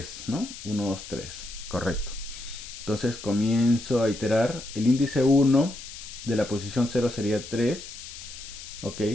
¿no? 1, 2, 3, correcto. Entonces comienzo a iterar. El índice 1 de la posición 0 sería 3, ok.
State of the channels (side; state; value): left; noise; hiss, 12 dB below the sound